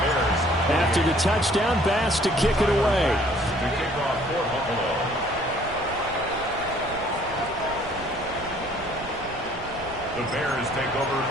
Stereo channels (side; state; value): right; noise; rumble, 17 dB below the sound